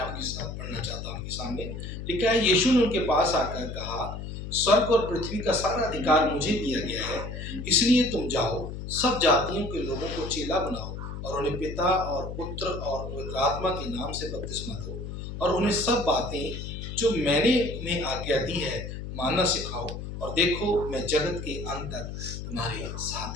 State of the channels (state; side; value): noise; left; hum, 8 dB below the sound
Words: साथ पढ़ना चाहता हूँ। आपके सामने लिखा है, यीशु ने उनके पास आकर कहा, स्वर्ग और पृथ्वी का सारा अधिकार मुझे दिया गया है, इसलिए तुम जाओ, सब जातियों के लोगों को चेला बनाओ और उन्हें पिता और पुत्र और पवित्र आत्मा के नाम से बपतिस्मा दो और उन्हें सब बातें जो मैंने उन्हें आज्ञा दी है मानना सिखाओ, और देखो मैं जगत के अंत तक तुम्हारे